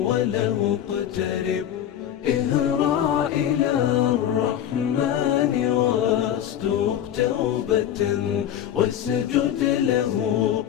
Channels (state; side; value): quieter; right; 10.5 dB